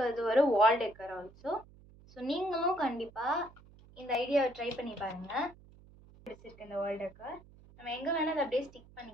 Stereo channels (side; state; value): right; noise; hum, 24 dB below the sound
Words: அது ஒரு வால் டெக்கர் ஆல்சோ. ஸோ நீங்களும் கண்டிப்பாக இந்த ஐடியாவை ட்ரை பண்ணி பாருங்கள். பிடிச்சிருக்கு இந்த வால் டெக்கர். நம்ம எங்கே வேணால் அதை அப்படியே ஸ்டிக்